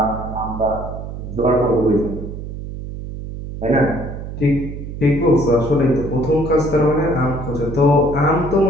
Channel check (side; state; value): right; noise; hum, 9 dB below the sound